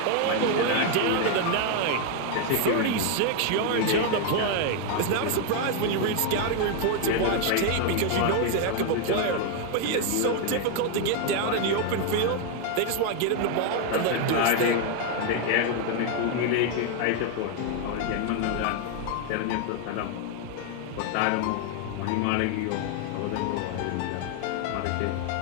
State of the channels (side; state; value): both; different; correlation 0.01